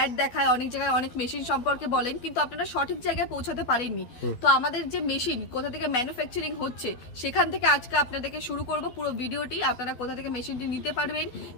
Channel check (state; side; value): late; right; 12 ms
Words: দেখায়, অনেক জায়গায় অনেক মেশিন সম্পর্কে বলেন, কিন্তু আপনারা সঠিক জায়গায় পৌঁছাতে পারেননি। তো আমাদের যে মেশিন কোথা থেকে ম্যানুফ্যাকচারিং হচ্ছে সেখান থেকে আজকে আপনাদেরকে শুরু করব পুরো ভিডিওটি। আপনারা কোথা থেকে মেশিনটি নিতে পারবেন,